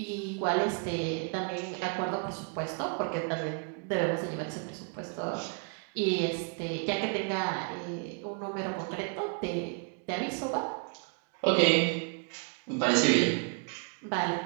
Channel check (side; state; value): left; quieter; 38.2 dB